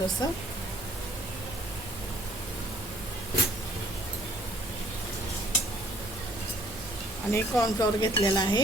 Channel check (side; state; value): both; normal; correlation 0.61